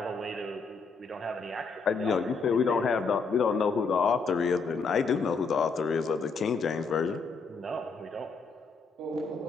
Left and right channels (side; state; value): right; quieter; 4.6 dB